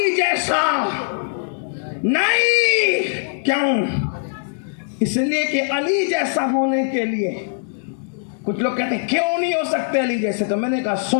جیسا نہیں، کیوں؟ اس لیے کہ علی جیسا ہونے کے لیے کچھ لوگ کہتے ہیں کیوں نہیں ہو سکتے علی جیسے، تو میں نے کہا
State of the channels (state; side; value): silent; right; digital silence